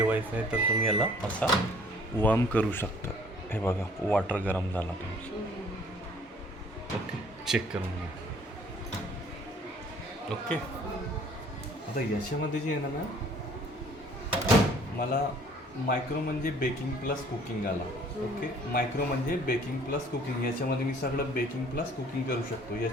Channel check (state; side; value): normal; both; correlation 0.55